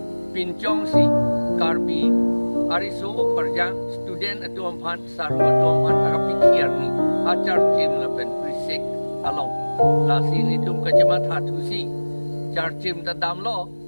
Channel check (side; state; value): both; inverted; correlation -1.00